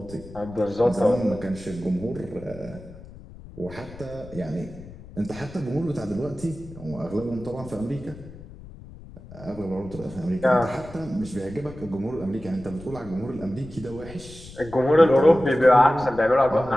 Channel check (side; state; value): left; noise; rumble, 17 dB below the sound